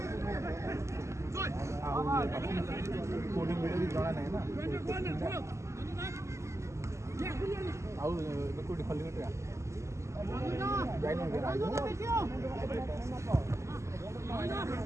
कोडिंग वीडियो भी जଣା नहीं ना आउ कोडी खली कटरा जाई न गया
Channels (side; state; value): left; late; 0.14 ms